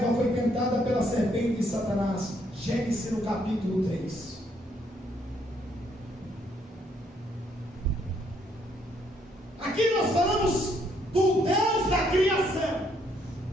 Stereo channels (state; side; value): normal; both; correlation 0.70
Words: foi tentada pela serpente de Satanás. Gênesis no capítulo 3. Aqui nós falamos do Deus da criação,